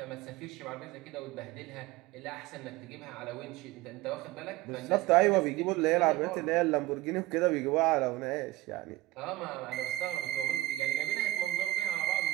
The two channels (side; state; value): left; quieter; 17.8 dB